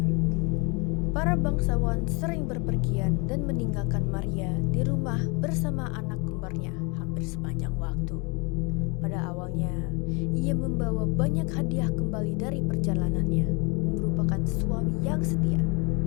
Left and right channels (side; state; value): right; quieter; 30.4 dB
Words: Para bangsawan sering berpergian dan meninggalkan Maria di rumah bersama anak kembarnya hampir sepanjang waktu. Pada awalnya, ia membawa banyak hadiah kembali dari perjalanannya dan merupakan suami yang setia.